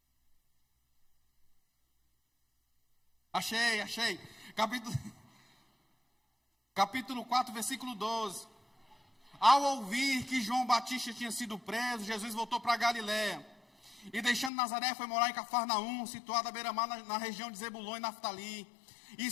Achei. Capítulo 4, versículo 12. Ao ouvir que João Batista tinha sido preso, Jesus voltou para Galiléia. E deixando Nazaré, foi morar em Cafarnaum, situada à beira-mar na região de Zebulon e Naftali.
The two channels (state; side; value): drops out; right; at 14.5 s